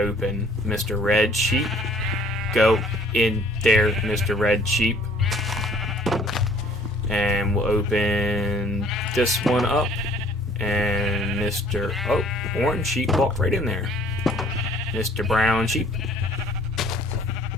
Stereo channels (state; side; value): normal; both; correlation 0.56